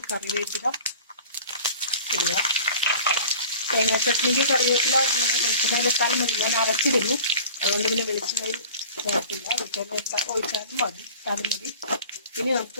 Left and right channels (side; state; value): both; inverted; correlation -0.43